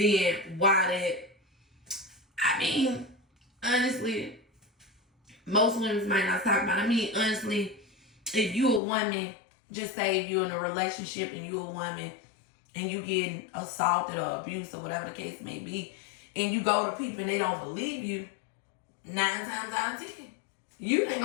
why that? I mean, honestly, most women might not talk about it. I mean, honestly, if you a woman, just say if you're in a relationship and you a woman and you getting assaulted or abused or whatever the case may be, and you go to people and they don't believe you, 9 times out of 10, you ain't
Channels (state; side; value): drops out; right; at 8.8 s